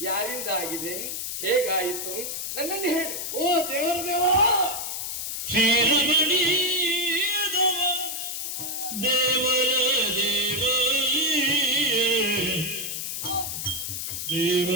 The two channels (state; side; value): noise; left; hiss, 4 dB below the sound